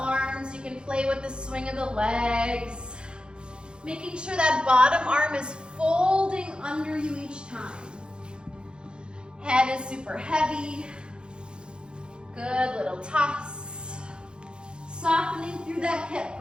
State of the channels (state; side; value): late; left; 0.051 ms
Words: you can play with the swing of the legs. Making sure that bottom arm is folding under you each time. Head is super heavy. Good, little toss. Softening through that hip,